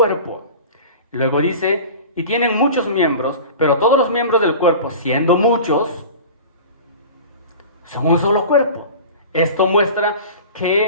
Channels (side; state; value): both; inverted; correlation -0.37